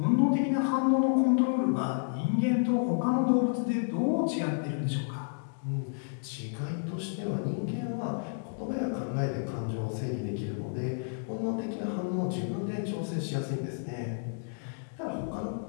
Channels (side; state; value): right; silent; digital silence